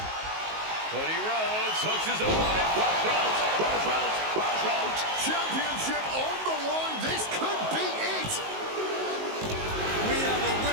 Cody Rhodes hooks his opponent. Rhodes. Championship on the line. This could be it. We have a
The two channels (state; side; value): late; left; 19 ms